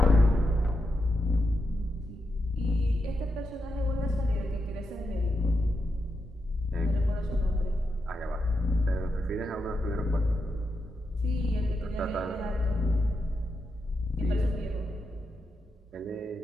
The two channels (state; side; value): normal; both; correlation 0.85